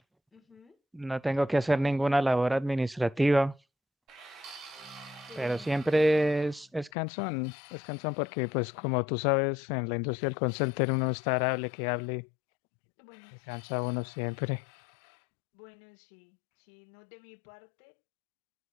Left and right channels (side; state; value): right; drops out; at 6.9 s